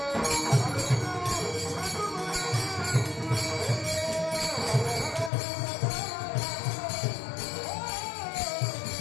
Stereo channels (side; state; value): right; drops out; at 5.3 s